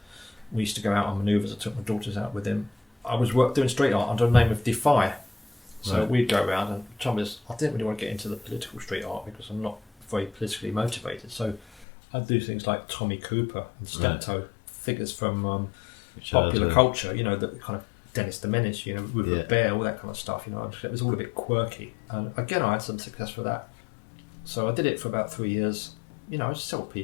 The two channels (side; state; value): right; drops out; at 11.9 s